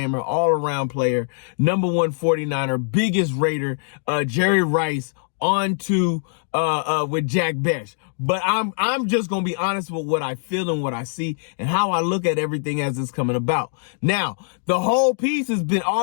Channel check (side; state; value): right; silent; digital silence